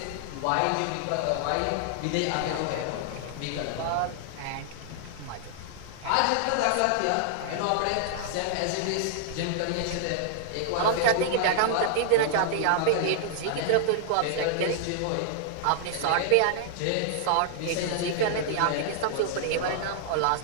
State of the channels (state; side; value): different; both; correlation -0.01